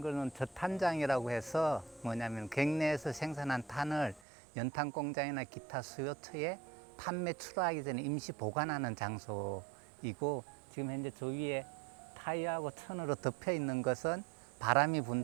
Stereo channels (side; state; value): left; drops out; at 4.2 s